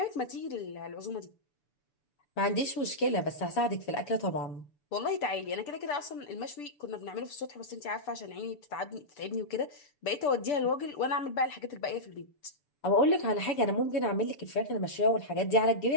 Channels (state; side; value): late; right; 6.9 ms